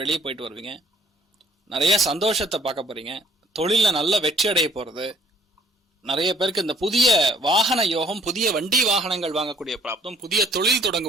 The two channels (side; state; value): both; normal; correlation 0.60